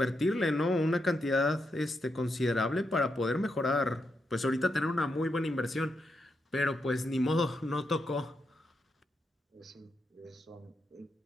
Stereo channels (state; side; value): normal; both; correlation 0.83